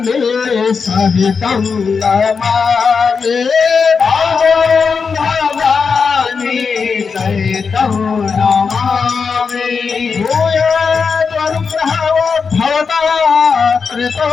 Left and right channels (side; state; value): right; quieter; 5.4 dB